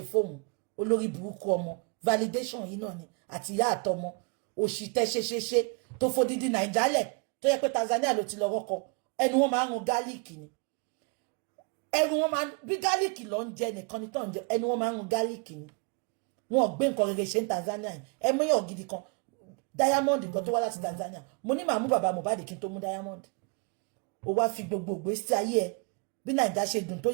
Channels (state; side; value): quieter; left; 35.4 dB